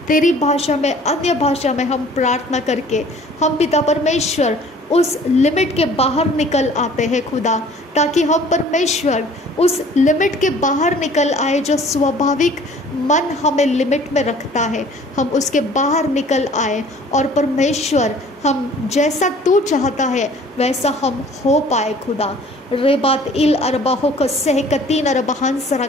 तेरी भाषा में, अन्य भाषा में हम प्रार्थना करके हम पिता परमेश्वर उस लिमिट के बाहर निकल आते हैं खुदा, ताकि हम परमेश्वर उस लिमिट के बाहर निकल आए जो स्वाभाविक मन हमें लिमिट में रखता है, हम उसके बाहर निकल आए और परमेश्वर हम जैसा तू चाहता है वैसा हम हो पाए खुदा। रेबात इल अरबाहो को सहकतीन अरबहांस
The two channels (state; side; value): normal; both; correlation 0.51